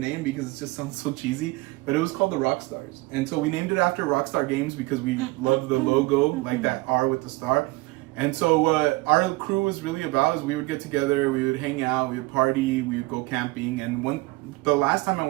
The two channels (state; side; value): quieter; left; 22.6 dB